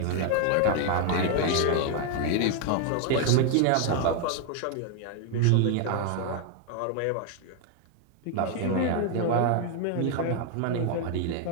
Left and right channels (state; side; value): different; both; correlation 0.00